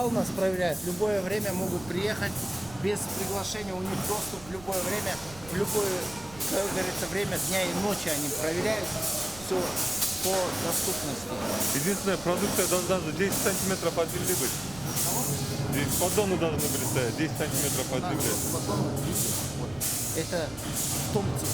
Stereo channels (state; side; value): noise; right; rumble, 19 dB below the sound